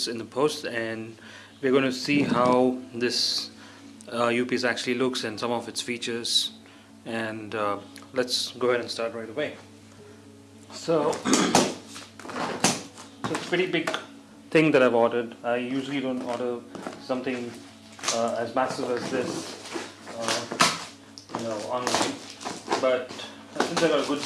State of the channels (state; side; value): identical; both; correlation 1.00